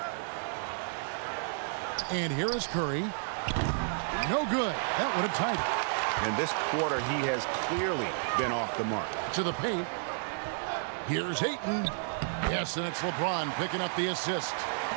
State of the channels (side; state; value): left; silent; digital silence